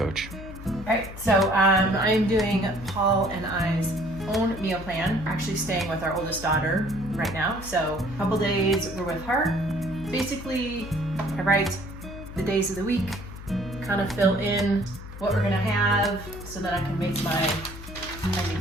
All right, so I'm doing Paul and I's own meal plan. We're actually staying with our oldest daughter right now, so a couple days we're with her. Basically, I write the days of the week, kind of fill in what we're gonna have so that I can make my handy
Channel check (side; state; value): left; noise; hum, 13 dB below the sound